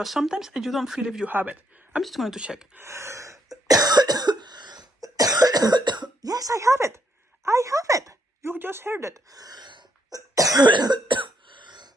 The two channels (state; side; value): normal; both; correlation 0.74